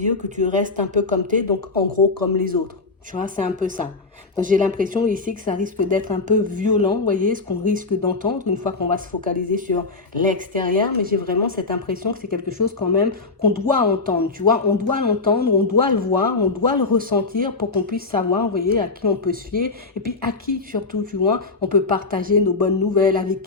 dire, que tu restes un peu comme t'es, donc en gros comme les autres. Tu vois, c'est un peu ça. Donc j'ai l'impression ici que ça risque d'être un peu violent, vous voyez, ce qu'on risque d'entendre une fois qu'on va se focaliser sur l'extérieur, mais j'ai vraiment cette impression que c'est quelque chose quand même qu'on doit entendre, tu vois, on doit l'entendre, on doit le voir, on doit le ressentir pour qu'on puisse savoir, vous voyez, à qui on peut se fier, et puis à qui surtout, tu vois, on peut partager nos bonnes nouvelles, avec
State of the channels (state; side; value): quieter; right; 3.9 dB